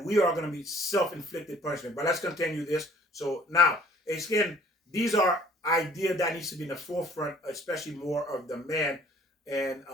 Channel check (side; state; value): both; normal; correlation 0.54